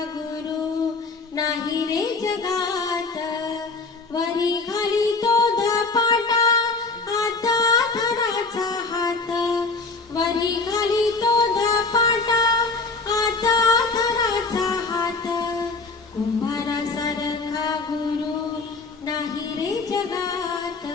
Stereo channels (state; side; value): quieter; right; 3.9 dB